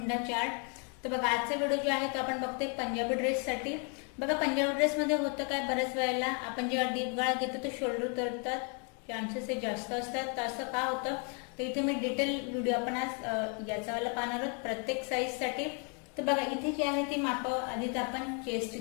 चार्ट. तर बघा आजचा व्हिडिओ जो आहे तो आपण बघतोय पंजाबी ड्रेस साठी. बघा पंजाबी ड्रेस मध्ये होतं काय, बऱ्याच वेळेला आपण जेव्हा डीप गळा घेतो तर शोल्डर उतरतात, चान्सेस हे जास्त असतात. तर असं का होतं तर इथे मी डिटेल व्हिडिओ आपण आज याचा वाला पाहणार आहोत प्रत्येक साईज साठी. तर बघा इथे जी आहे ती माप आधीच आपण चेस्ट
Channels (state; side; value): quieter; right; 37.8 dB